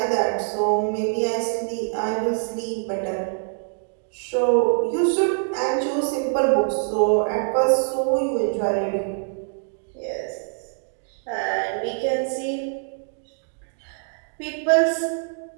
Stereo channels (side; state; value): left; silent; digital silence